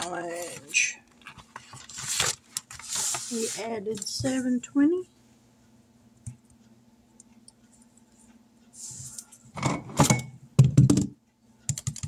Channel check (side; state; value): both; identical; correlation 1.00